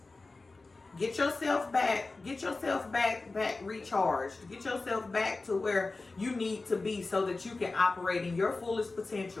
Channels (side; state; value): right; quieter; 3.5 dB